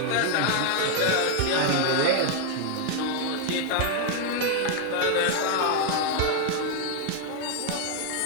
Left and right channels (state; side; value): different; both; correlation 0.00